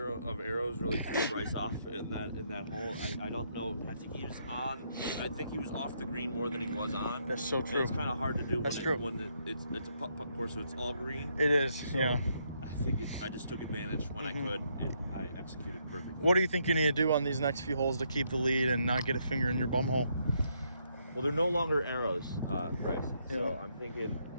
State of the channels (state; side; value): inverted; both; correlation -0.75